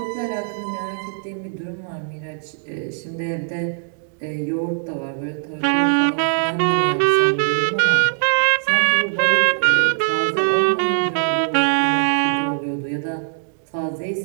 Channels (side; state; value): left; silent; digital silence